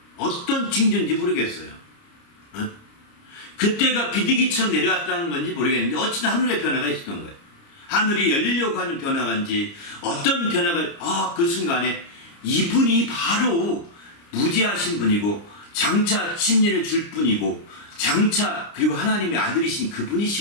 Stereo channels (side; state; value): right; late; 29 ms